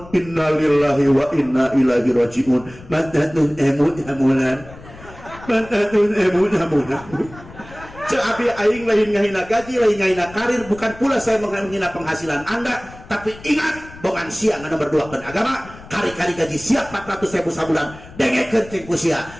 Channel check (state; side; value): noise; left; rumble, 19 dB below the sound